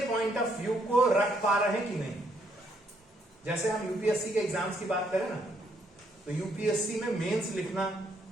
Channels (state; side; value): normal; both; correlation 0.72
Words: पॉइंट ऑफ व्यू को रख पा रहे हैं कि नहीं। जैसे हम यूपीएससी के एग्जाम्स की बात करें ना, तो यूपीएससी में मेंस लिखना